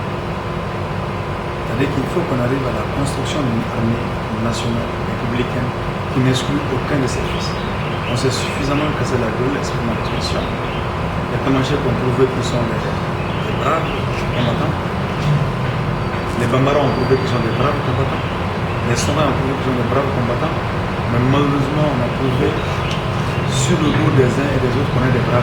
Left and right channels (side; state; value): both; identical; correlation 1.00